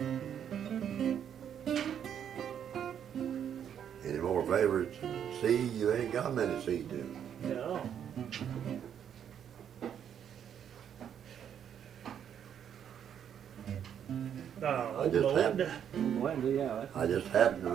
Any more favorites? C, you ain't got many C tunes. No. I just happened to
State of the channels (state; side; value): quieter; left; 8.9 dB